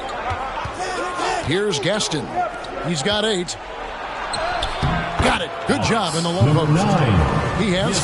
Here's Gaston. He's got 8. Got it. Good job in the low post. He has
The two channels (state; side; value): identical; both; correlation 1.00